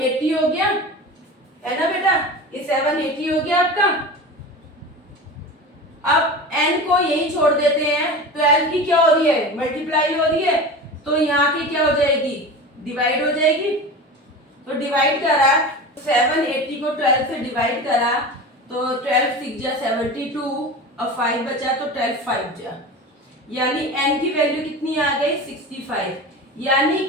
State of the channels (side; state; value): both; normal; correlation 0.31